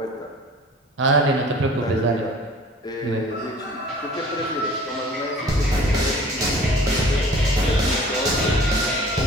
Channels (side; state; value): both; normal; correlation 0.48